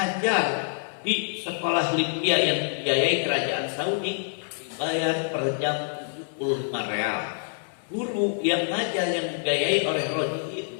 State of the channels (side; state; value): right; silent; 61 dB below the other